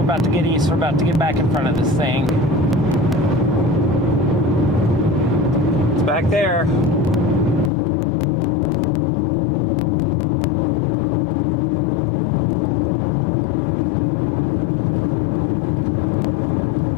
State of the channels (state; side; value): drops out; right; at 7.7 s